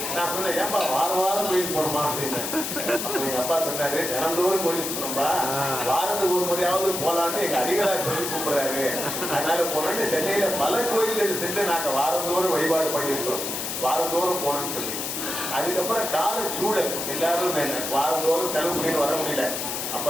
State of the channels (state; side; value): noise; left; hiss, 4 dB below the sound